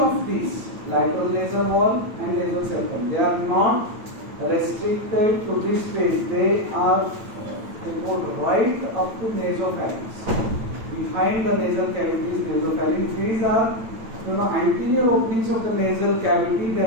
these, lateral nasal wall and nasal septum, they are not restricted to this space. They go right up to nasopharynx. Behind the nasal cavity is nasopharynx. These are, anterior openings of the nasal cavity.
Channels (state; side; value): late; left; 9.1 ms